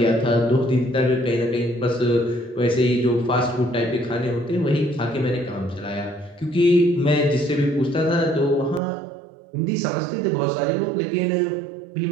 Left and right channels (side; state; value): left; drops out; at 8.8 s